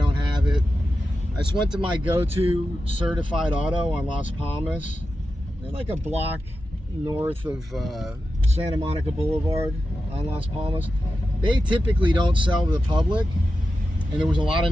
have it. I just went to my go-to certified auto on Las Palmas. They're like a block north of Santa Monica Boulevard on Las Palmas. They typically don't sell to the public, and there was a lot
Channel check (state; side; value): normal; both; correlation 0.91